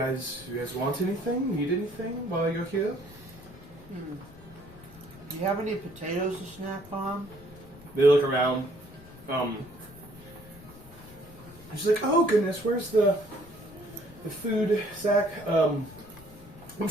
want anything, need anything while you're here?" Do you have any potatoes to snack on? They look around. She's like, "Oh goodness, where's the food sack?" I'm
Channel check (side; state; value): left; noise; rumble, 20 dB below the sound